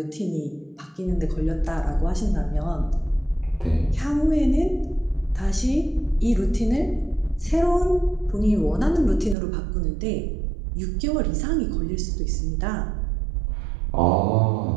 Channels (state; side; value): drops out; left; at 9.3 s